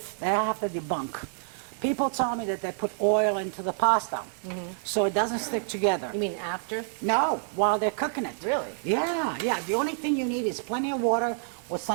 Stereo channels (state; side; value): silent; left; digital silence